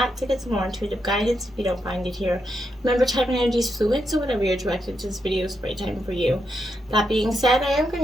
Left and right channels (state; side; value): normal; both; correlation 0.83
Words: to get some more intuitive guidance if you don't find it here. Remember, type and energy is fluid, so whatever you're directed to this video is the right time for you. That being said, I am going